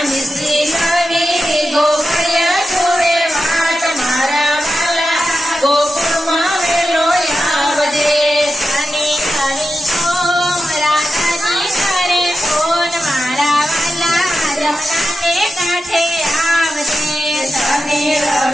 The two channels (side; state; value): both; normal; correlation 0.91